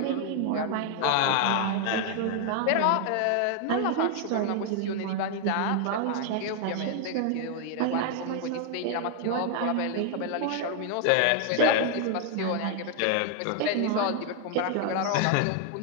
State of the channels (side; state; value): both; different; correlation 0.00